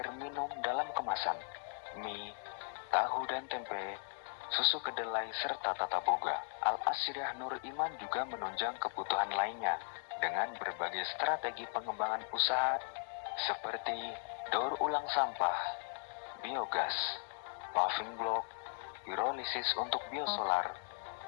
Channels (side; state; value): right; silent; 53 dB below the other